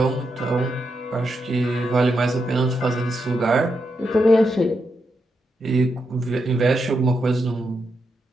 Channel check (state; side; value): normal; both; correlation 0.84